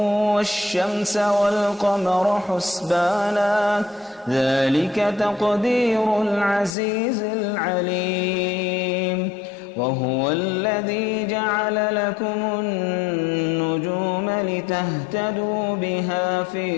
والشمس والقمر حسبانا ذلك تقدير العزيز العليم وهو الذي جعل لكم النجوم لتهتدوا بها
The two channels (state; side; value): drops out; right; at 6.8 s